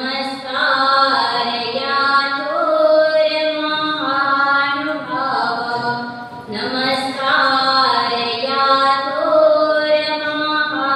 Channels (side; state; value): both; identical; correlation 1.00